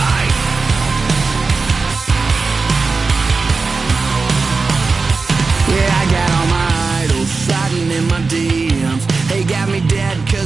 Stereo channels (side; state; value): left; quieter; 4.2 dB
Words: yeah, I got all my idols sliding in my DMs. They got me dead